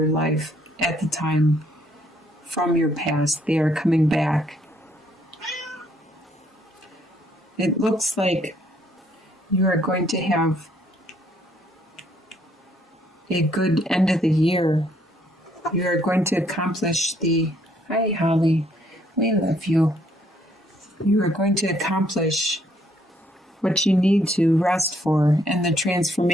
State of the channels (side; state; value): both; normal; correlation 0.68